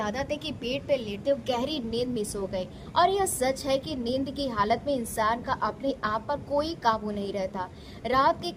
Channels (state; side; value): identical; both; correlation 1.00